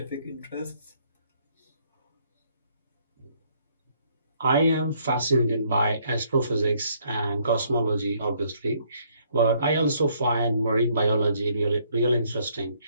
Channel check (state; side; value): inverted; both; correlation -0.67